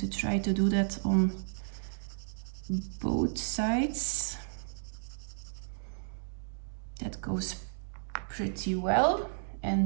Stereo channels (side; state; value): left; silent; digital silence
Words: try to do that on both sides. That goes pretty well.